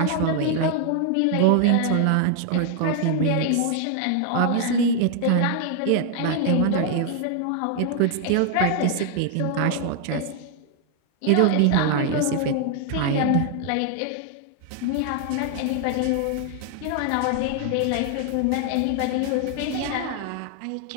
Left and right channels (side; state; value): both; different; correlation 0.00